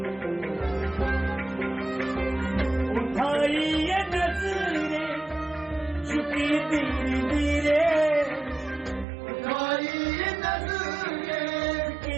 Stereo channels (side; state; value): left; drops out; at 9.1 s